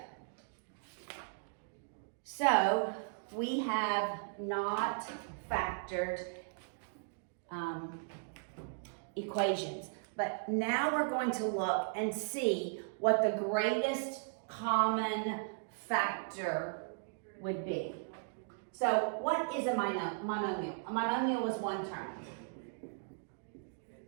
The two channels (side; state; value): left; silent; digital silence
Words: so we have not factored equations, but now we're going to look and see what the greatest common factor would be. So what is a monomial? A monomial is one term.